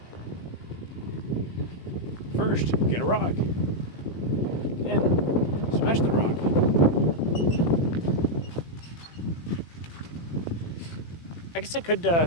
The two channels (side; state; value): right; late; 18 ms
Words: First, get a rock. Then, smash the rock. I guess I